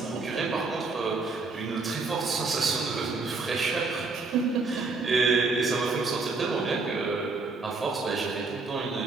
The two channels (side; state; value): left; quieter; 3.9 dB